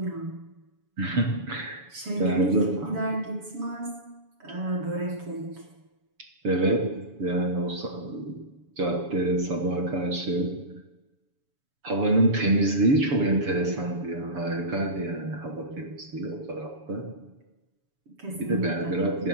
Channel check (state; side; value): late; left; 7.0 ms